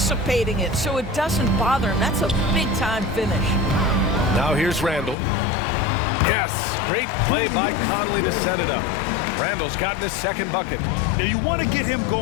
it, so it doesn't bother him. That's a big-time finish. Now here's Randle. Yes, great play by Conley to set it up. Randle's gotten his second bucket. Now you want to get him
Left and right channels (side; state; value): right; drops out; at 5.2 s